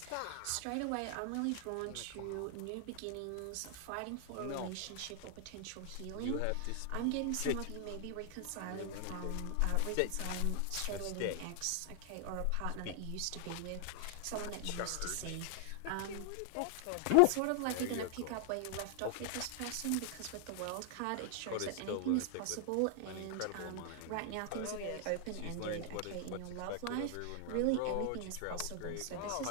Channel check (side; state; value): both; different; correlation 0.00